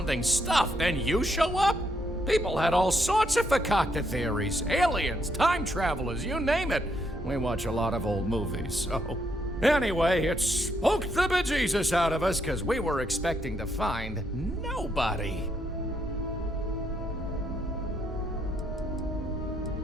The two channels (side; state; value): both; normal; correlation 0.75